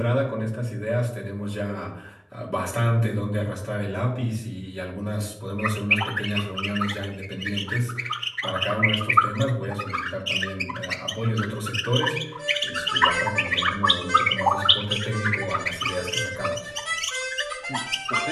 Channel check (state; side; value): identical; both; correlation 1.00